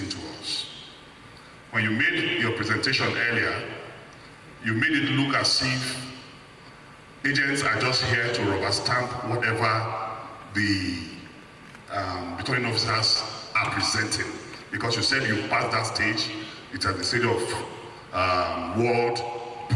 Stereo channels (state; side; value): identical; both; correlation 1.00